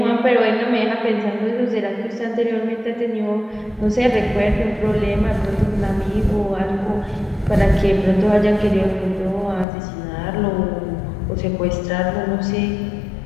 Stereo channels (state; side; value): drops out; right; at 9.7 s